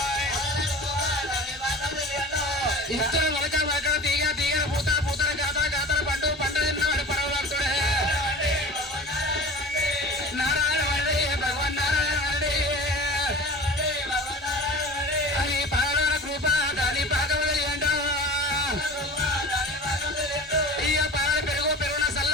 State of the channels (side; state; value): both; normal; correlation 0.38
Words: ఇత్తన మొలక మొలక తీగ తీగ పూత పూతల గాతల గాతల పండు పంట తిన్నాడు పరవలాడుతుడే నారాయణ వరడే భగవాన్ నారాయణ వరడే అది పాలరాన కృప దాని పాకవలి అంటూ ఇయ్య పాల పెరుగు పెరుగున సల్ల